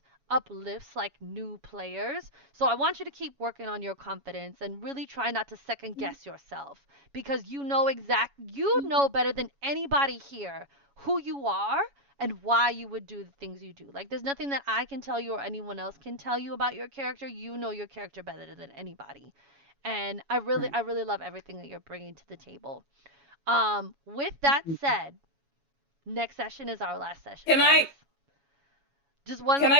uplifts like new players. So I want you to keep working on your confidence and really try not to second guess yourself, because you know better than anybody here who you are and why you would do the things you do. Like, there's nothing that I can tell you or anyone else can tell you about your character. You know your character better than anybody. And I really love everything that you're bringing to the table. With that said, next session is our last session, Can I- guys. Just one Can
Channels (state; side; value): late; left; 7.2 ms